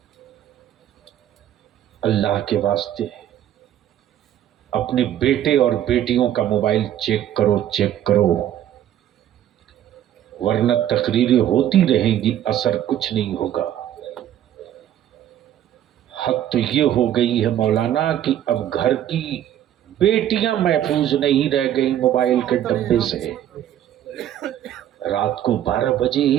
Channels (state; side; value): quieter; left; 11.3 dB